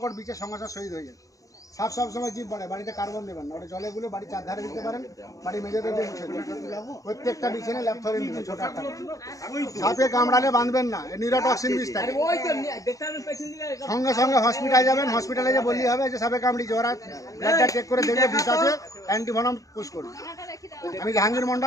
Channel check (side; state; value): right; late; 0.16 ms